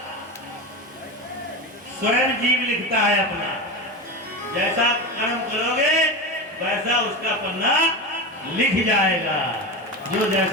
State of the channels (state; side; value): normal; both; correlation 0.22